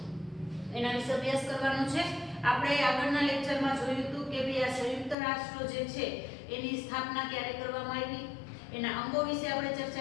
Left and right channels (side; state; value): right; drops out; at 5.2 s